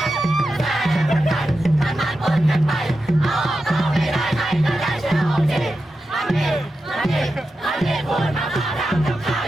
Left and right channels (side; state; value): both; normal; correlation 0.90